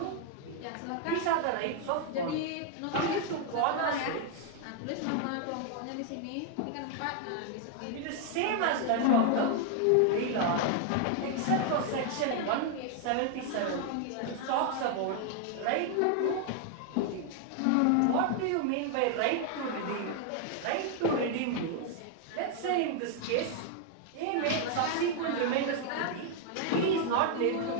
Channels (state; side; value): different; both; correlation 0.00